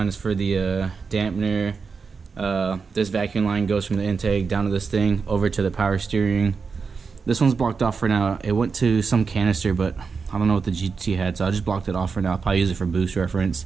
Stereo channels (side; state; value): left; quieter; 5.2 dB